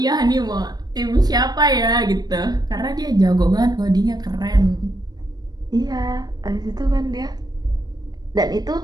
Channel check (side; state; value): left; late; 0.19 ms